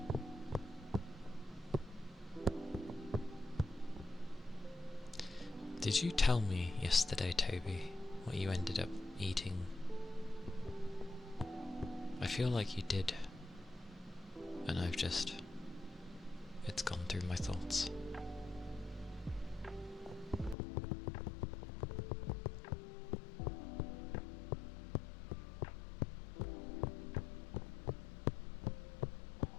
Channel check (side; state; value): right; drops out; at 20.6 s